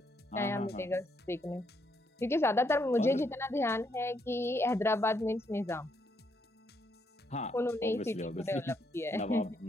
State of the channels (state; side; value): normal; both; correlation 0.75